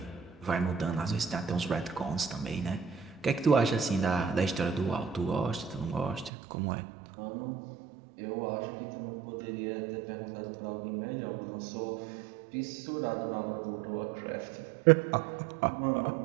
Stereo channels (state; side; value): drops out; left; at 6.3 s